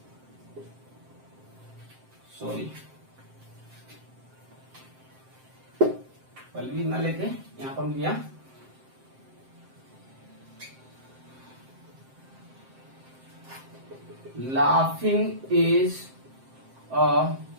ना लेके यहाँ पर लिया, laughing is a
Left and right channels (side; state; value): left; late; 7.6 ms